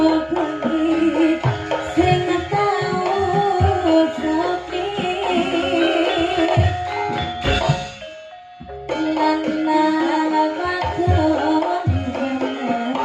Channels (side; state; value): both; identical; correlation 1.00